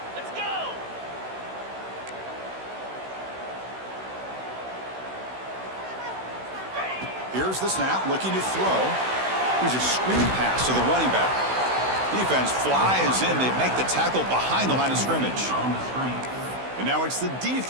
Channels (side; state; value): left; late; 16 ms